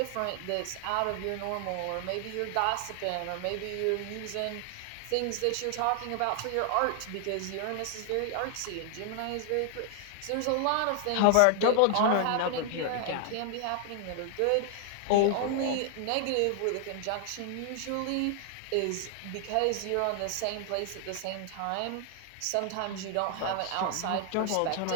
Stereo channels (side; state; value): both; different; correlation 0.00